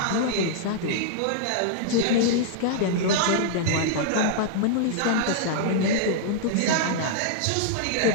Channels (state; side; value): different; both; correlation -0.01